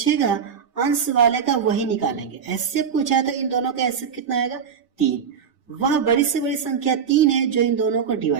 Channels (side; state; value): left; quieter; 7.0 dB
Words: अंश वाले का वही निकालेंगे। एचसीएफ पूछा है तो इन दोनों का एचसीएफ कितना आएगा, 3। वह बड़ी से बड़ी संख्या 3 है जो इन दोनों को